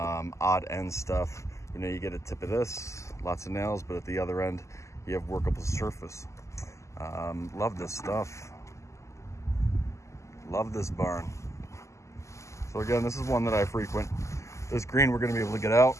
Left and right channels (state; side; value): late; right; 0.14 ms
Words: end stuff. You know, you get a tip of this, lots of nails, but at the other end, you have workable surface. Love this stuff. Love this barn. So again, this is one that I frequent. This green we're going to be able to get out.